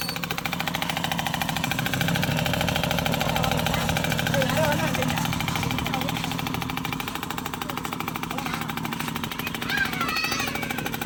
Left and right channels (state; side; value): identical; both; correlation 1.00